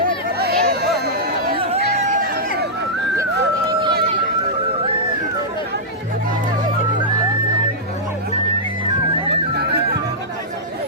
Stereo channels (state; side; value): normal; both; correlation -0.12